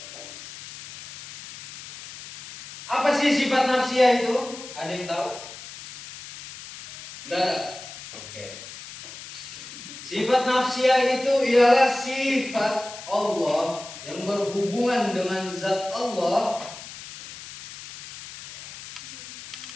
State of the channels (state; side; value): noise; left; hiss, 14 dB below the sound